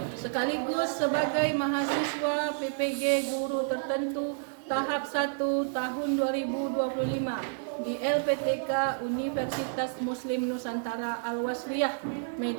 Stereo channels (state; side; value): silent; left; digital silence